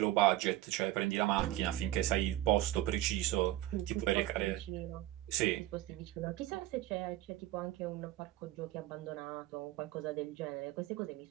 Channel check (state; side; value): quieter; left; 15.2 dB